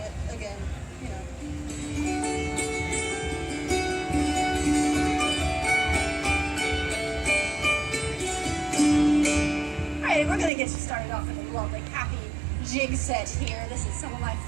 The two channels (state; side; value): drops out; left; at 10.5 s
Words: again, you know. Alright, we're gonna get you started off with a lovely, happy jig set here. This is some of my